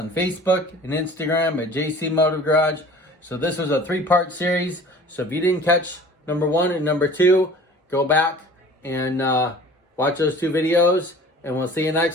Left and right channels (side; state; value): both; normal; correlation 0.45